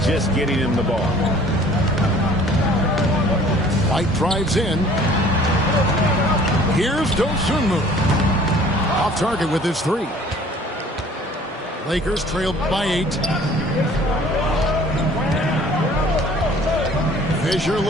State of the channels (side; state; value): both; normal; correlation 0.52